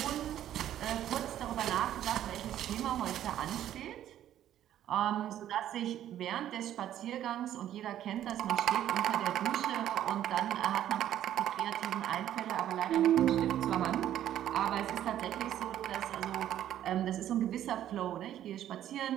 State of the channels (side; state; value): left; quieter; 11.6 dB